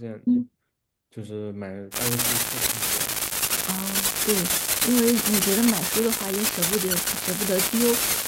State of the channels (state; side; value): identical; both; correlation 1.00